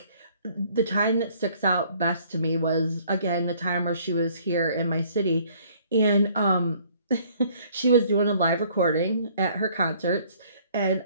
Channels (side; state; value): both; inverted; correlation -0.59